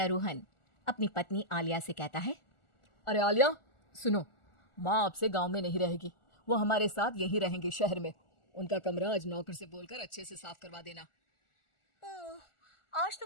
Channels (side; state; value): right; late; 1.4 ms